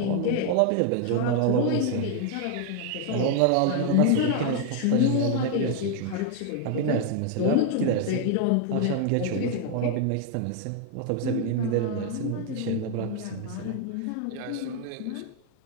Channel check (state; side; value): different; both; correlation 0.00